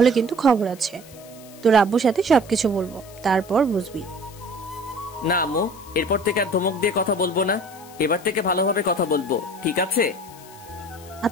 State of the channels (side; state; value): left; noise; hiss, 21 dB below the sound